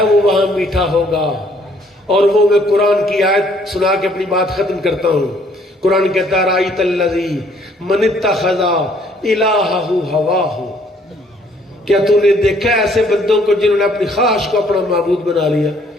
وہ وہاں میٹھا ہوگا اور وہ میں قرآن کی آیت سنا کے اپنی بات ختم کرتا ہوں قرآن کہتا ہے رأیت الذی من اتخذ الہہ ہواہ کیا تو نے دیکھا ایسے بندوں کو جنہوں نے اپنی خواہش کو اپنا معبود بنا لیا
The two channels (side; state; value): both; normal; correlation 0.63